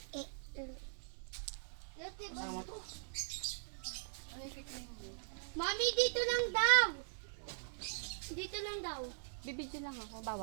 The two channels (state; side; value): silent; left; digital silence